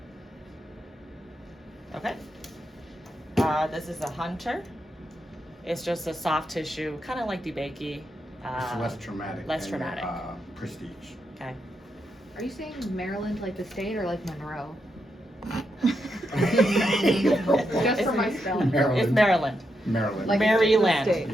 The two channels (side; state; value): both; normal; correlation 0.83